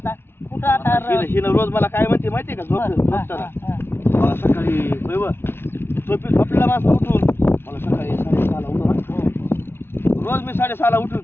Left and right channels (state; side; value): late; right; 0.11 ms